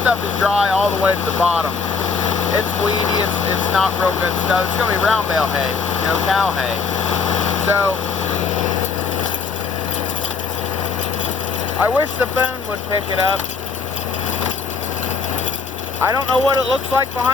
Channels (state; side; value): quieter; right; 5.1 dB